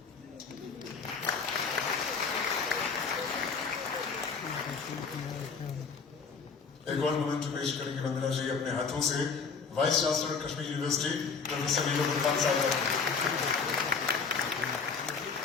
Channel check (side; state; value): right; quieter; 5.3 dB